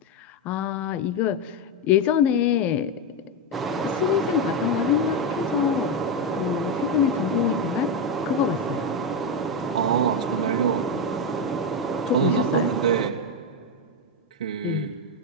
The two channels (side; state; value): both; normal; correlation 0.08